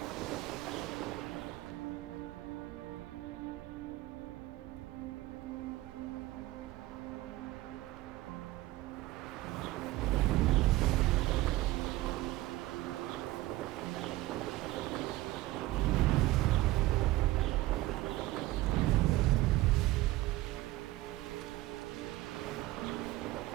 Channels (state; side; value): quieter; left; 17.6 dB